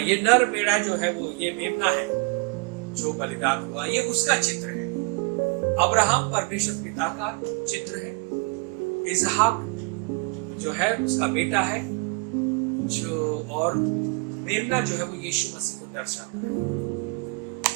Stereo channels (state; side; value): quieter; left; 31.3 dB